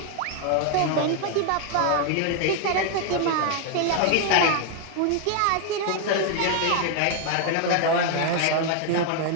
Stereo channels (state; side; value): different; both; correlation 0.00